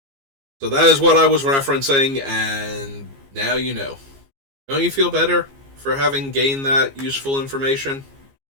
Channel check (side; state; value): left; late; 15 ms